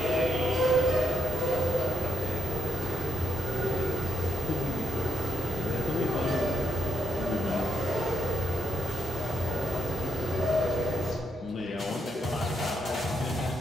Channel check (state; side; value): normal; both; correlation 0.79